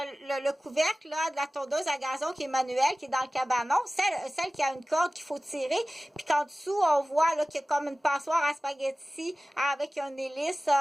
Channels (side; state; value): both; normal; correlation 0.97